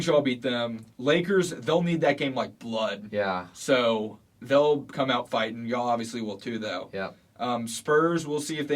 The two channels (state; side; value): identical; both; correlation 1.00